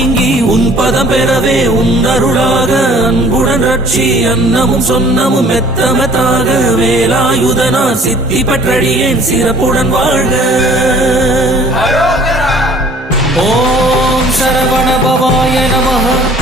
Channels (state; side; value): normal; both; correlation 0.52